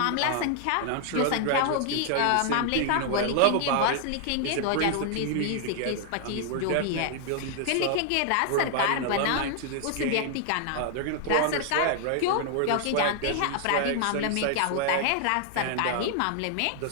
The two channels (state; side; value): different; both; correlation 0.00